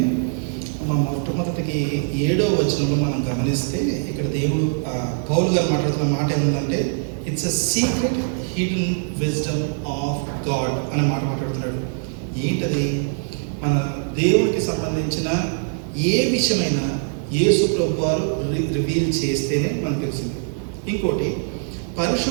మొట్టమొదటికి 7వ వచనంలో మనం గమనిస్తే ఇక్కడ దేవుడు పౌలు గారు మాట్లాడుతున్న మాట ఏముందంటే, it's a secret hidden wisdom of God అనే మాట మాట్లాడుతున్నాడు. ఏంటది? మన దేవుడికి సంబంధించిన ఏ విషయమైనా యేసు ప్రభు వారు రివీల్ చేస్తేనే మనకు తెలిసింది. ఇంకోటి,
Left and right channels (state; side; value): silent; left; digital silence